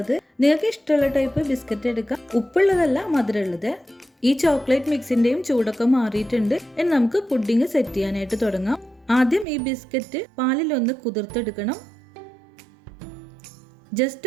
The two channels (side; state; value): left; drops out; at 9.5 s